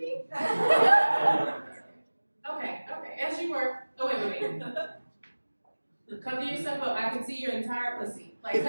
Okay, as you were. Oh, wait. Cover yourself up. I can see your entire pussy. Like,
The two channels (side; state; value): both; inverted; correlation -1.00